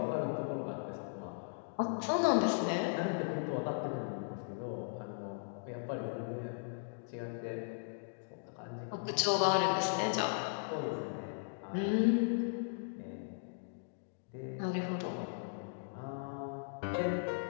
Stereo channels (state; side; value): silent; right; digital silence